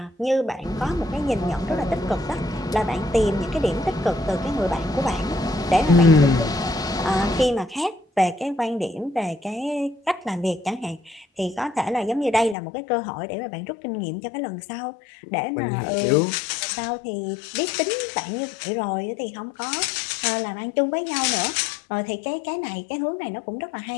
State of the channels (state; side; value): drops out; right; at 12.6 s